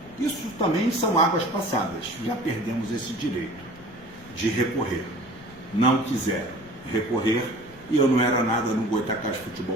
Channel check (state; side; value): noise; left; rumble, 22 dB below the sound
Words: isso também são águas passadas. Já perdemos esse direito de recorrer. Não quiseram recorrer e eu não era nada no Goitacás Futebol